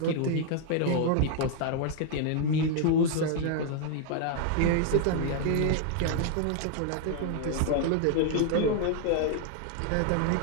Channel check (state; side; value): different; both; correlation 0.00